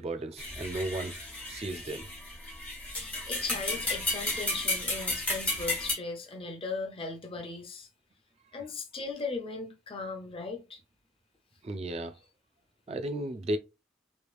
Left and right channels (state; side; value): normal; both; correlation 0.39